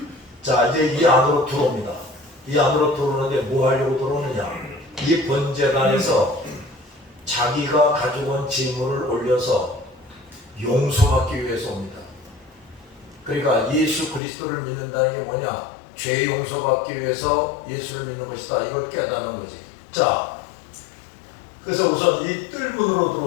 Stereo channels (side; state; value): right; drops out; at 14.2 s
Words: 자, 이제 이 안으로 들어옵니다. 이 안으로 들어오는데 뭐 하려고 들어오느냐? 이 번제단에서 자기가 가져온 재물을 올려서 용서받기 위해서 옵니다. 그러니까 예수 그리스도를 믿는다는 게 뭐냐? 죄 용서받기 위해서 예수를 믿는 것이다. 이걸 깨닫는 거지. 자, 그래서 우선 이 뜰문으로